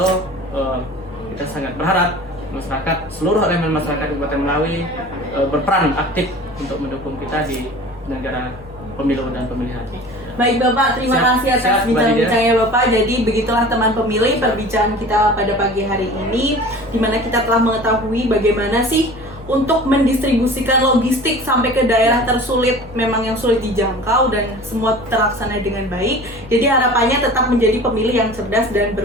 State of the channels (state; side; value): normal; both; correlation 0.41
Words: kita sangat berharap masyarakat, seluruh elemen masyarakat Kabupaten Melawi berperan aktif untuk mendukung kita di negara pemilu dan pemilihan. Baik Bapak, terima kasih atas bincang-bincangnya Bapak. Jadi begitulah teman pemilih perbincangan kita pada pagi hari ini, di mana kita telah mengetahui bagaimana sih untuk mendistribusikan logistik sampai ke daerah tersulit, memang yang sulit dijangkau, dan semua terlaksana dengan baik. Jadi harapannya tetap menjadi pemilih yang cerdas dan